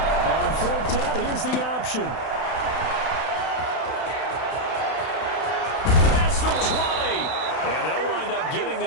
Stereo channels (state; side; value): late; right; 32 ms